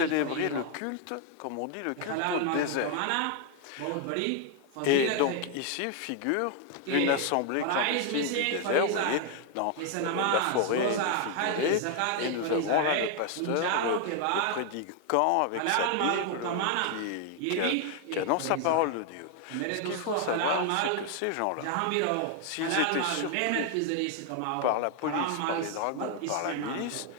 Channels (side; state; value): both; different; correlation 0.00